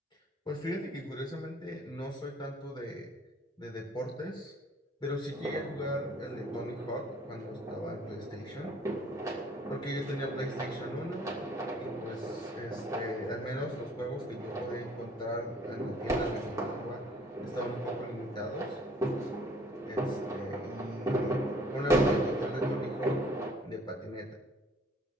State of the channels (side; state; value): both; normal; correlation 0.57